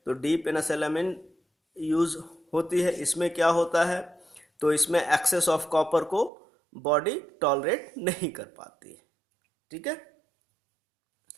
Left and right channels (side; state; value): left; drops out; at 6.3 s